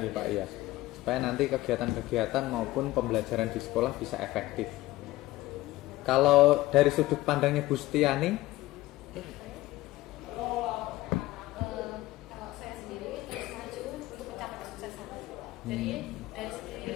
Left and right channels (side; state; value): right; quieter; 17.6 dB